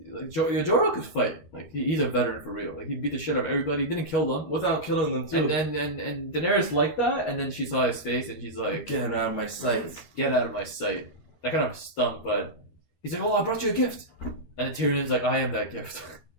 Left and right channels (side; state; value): right; late; 13 ms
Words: Jorah could fight. He's a veteran for real. He beat the shit out of everybody. He didn't kill them without killing them too. And Daenerys liked that, and then she saw his face, and she's like, "Get out of my sight! Get out of my sight!" That kind of stung, but he's like, "Oh, I brought you a gift," and Tyrion's like, "I am that gift."